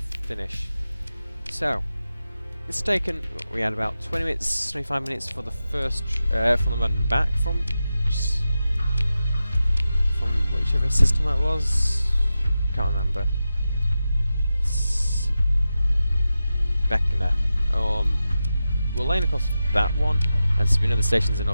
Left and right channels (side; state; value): both; inverted; correlation -0.92